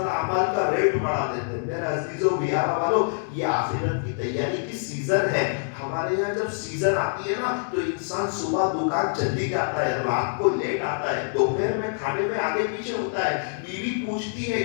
عمل کا ریٹ بڑھا دیتے. میرے عزیزوں بیارہ والوں, یہ آخرت کی تیاری کی سیزن ہے. ہمارے یہاں جب سیزن آتی ہے نا تو انسان صبح دکان جلدی جاتا ہے, رات کو لیٹ آتا ہے, دوپہر میں کھانے میں آگے پیچھے ہوتا ہے. بیوی پوچھتی ہے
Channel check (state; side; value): silent; right; digital silence